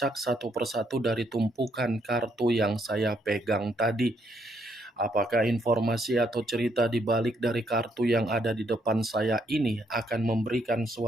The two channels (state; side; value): normal; both; correlation 0.73